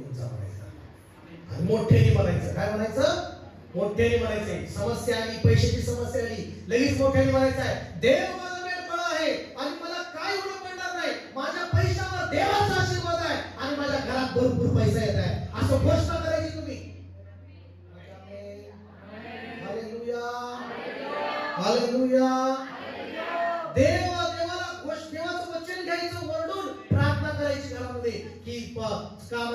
जा म्हणायचं. आणि मोठ्याने म्हणायचं. काय म्हणायचं? मोठ्याने म्हणायचंय. समस्या आली, पैशाची समस्या आली, लगेच मोठ्याने म्हणायचं आहे, देव माझा मेंढपाळ आहे आणि मला काय एवढं पडणार नाही. माझ्या पैशावर देवाचा आशीर्वाद आहे आणि माझ्या घरात भरपूर पैसा येत आहे, असं घोषणा करायची तुम्ही. Hallelujah, hallelujah. देवाला देवाचं वचन घ्यायचं, वरडून प्रार्थना करायची घरामध्ये की का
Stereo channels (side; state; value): both; identical; correlation 1.00